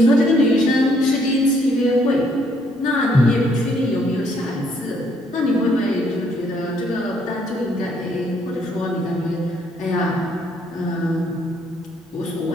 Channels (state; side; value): normal; both; correlation 0.68